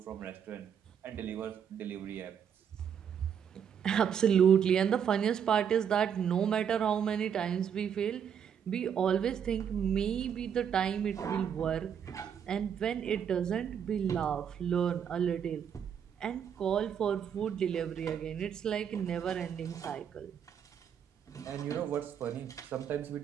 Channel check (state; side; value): quieter; left; 8.1 dB